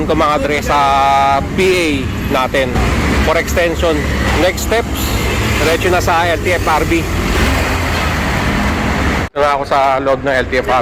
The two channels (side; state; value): both; identical; correlation 1.00